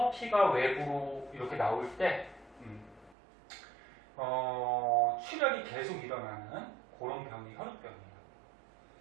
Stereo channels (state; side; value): drops out; left; at 3.2 s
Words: 피가 외부로 이렇게 나올 때 출혈이 계속 일어나는 그런 병이 혈우병이에요.